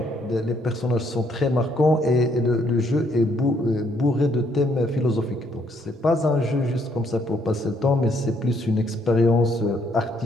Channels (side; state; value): both; normal; correlation 0.70